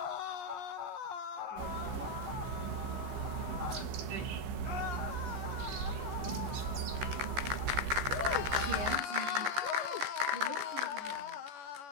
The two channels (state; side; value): late; left; 14 ms